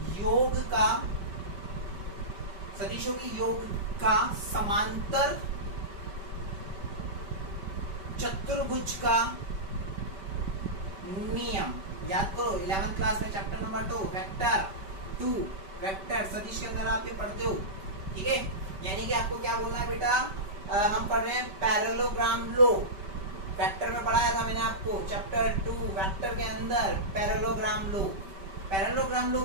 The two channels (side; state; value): left; late; 5.2 ms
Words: योग का, सदिशों के योग का समांतर चतुर्भुज का नियम। याद करो 11th क्लास में चैप्टर नंबर 2 वेक्टर 2 वेक्टर सदिश के अंदर आप ये पढ़ते हो। ठीक है, यानी कि आपको क्या बोलना है बेटा, हम पढ़ रहे हैं पैरेललोग्राम लो। वेक्टर में पढ़ाया था मैंने आपको चैप्टर 2 वेक्टर के अंदर पैरेललोग्राम लो। पैरेललोग्राम लो